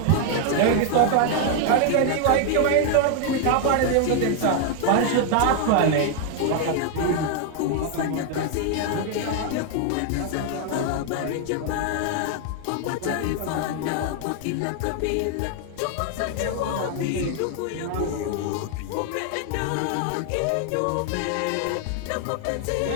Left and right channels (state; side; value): different; both; correlation 0.00